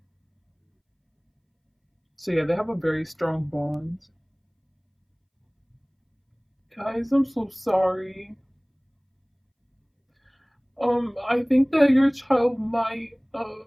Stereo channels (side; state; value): both; identical; correlation 1.00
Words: So yeah, they have a very strong bond. Guys, I'm so sorry. I think that your child might I